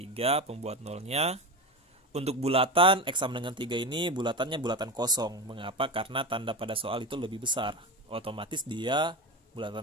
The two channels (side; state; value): both; normal; correlation 0.22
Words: pembuat nolnya. Untuk bulatan, X sama dengan 3 ini bulatannya bulatan kosong. Mengapa? Karena tanda pada soal itu lebih besar. Otomatis dia